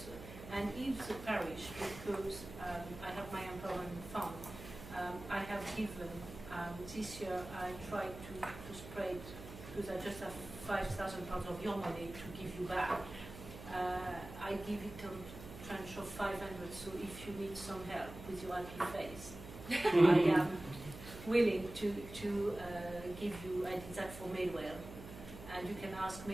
And if the parish, because I have my empowerment fund, I have given, this year I tried to spread, because I just have £5,000 of your money to give you back. I give it a tranche of 500, so if you need some help with your happy face, I am willing to give you, I did that for Midwell, and you can ask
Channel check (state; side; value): noise; right; hum, 13 dB below the sound